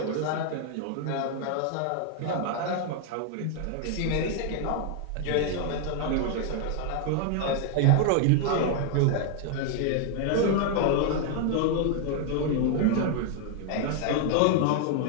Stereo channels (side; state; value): both; different; correlation 0.00